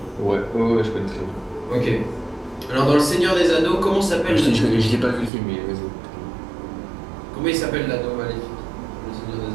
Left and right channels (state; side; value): drops out; left; at 5.3 s